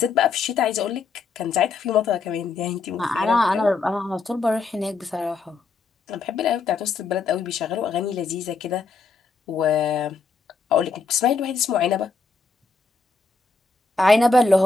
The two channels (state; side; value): quieter; right; 4.4 dB